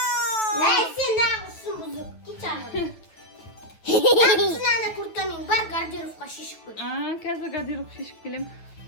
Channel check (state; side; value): late; right; 9.2 ms